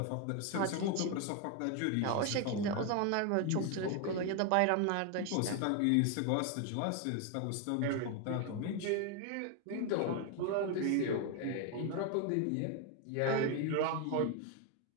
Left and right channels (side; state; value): both; different; correlation 0.01